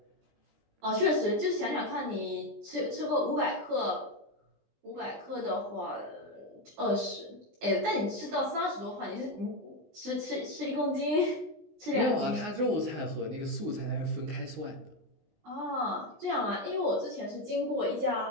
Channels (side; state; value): left; late; 19 ms